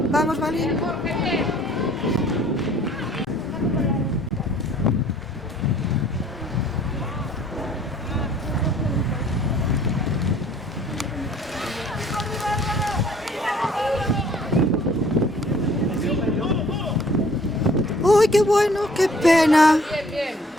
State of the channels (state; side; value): normal; both; correlation 0.56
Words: Vamos, Balín. Uy, qué bueno, qué pena.